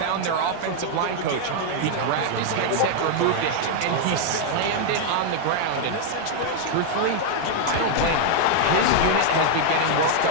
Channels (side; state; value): both; different; correlation 0.00